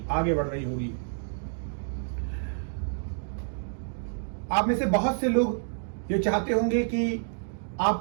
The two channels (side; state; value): left; silent; digital silence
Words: आगे बढ़ रही होगी। आप में से बहुत से लोग ये चाहते होंगे कि